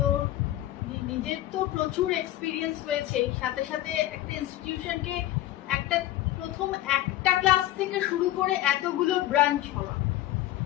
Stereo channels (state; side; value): quieter; right; 14.7 dB